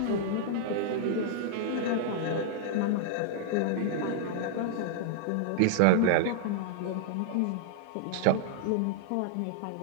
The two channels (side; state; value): both; different; correlation -0.01